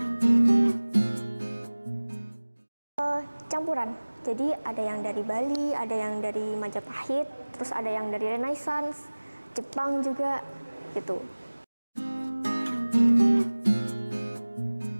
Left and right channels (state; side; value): inverted; both; correlation -1.00